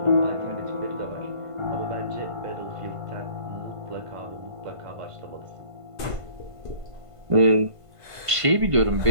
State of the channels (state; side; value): late; left; 1.5 ms